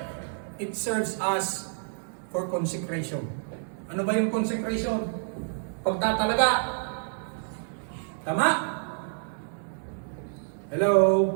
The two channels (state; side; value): silent; left; 59 dB below the other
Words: it serves us for consecration. Ano ba yung consecration? Pagtatalaga. Tama? Hello?